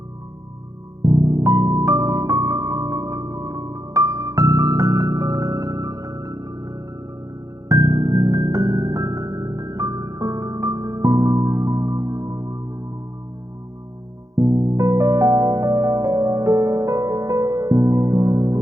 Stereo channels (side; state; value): left; late; 0.16 ms